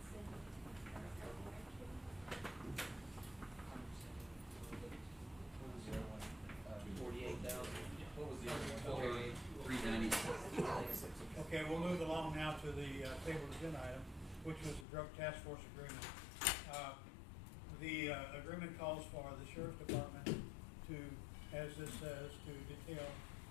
What was the other one? 396. Okay, we'll move along now to the table agenda item, which was the drug task force agreement. The agreement calls for the sheriff's department to, as this says, to detail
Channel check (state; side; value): drops out; right; at 14.9 s